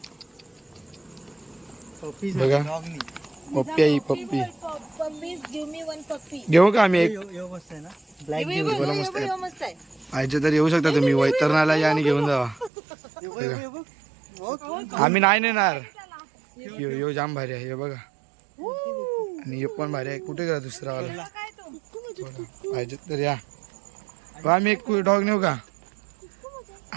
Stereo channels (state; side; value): drops out; left; at 12.7 s